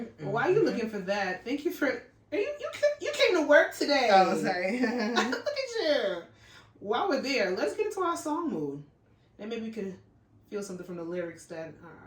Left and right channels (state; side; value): identical; both; correlation 1.00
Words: while you're looking for that, thank you for... You came to work today. Oh, sorry. Look at you. While we're there, let's get into our song mood. And maybe we could feel something from the lyrics that